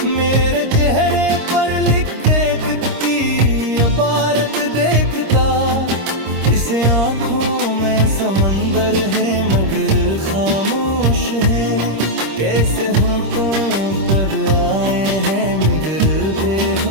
मेरे चेहरे पर लिखे दुख की इबारत देखता। इस आँखों में समंदर है मगर खामोश है, कैसे होंठों पर आए हैं मगर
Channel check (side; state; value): left; late; 26 ms